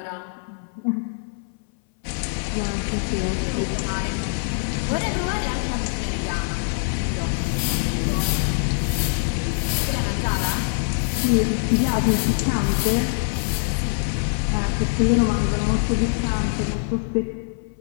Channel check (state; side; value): silent; right; 59 dB below the other